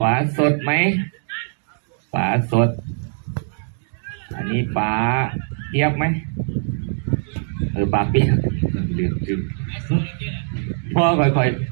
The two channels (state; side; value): silent; left; digital silence